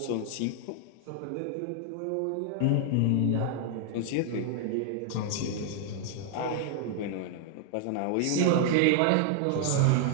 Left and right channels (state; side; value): different; both; correlation 0.00